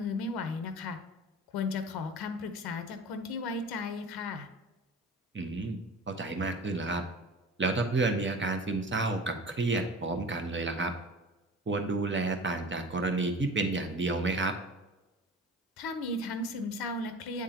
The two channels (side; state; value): both; normal; correlation 0.38